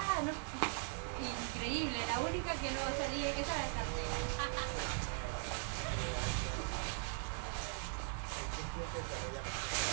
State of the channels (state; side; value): silent; left; 51 dB below the other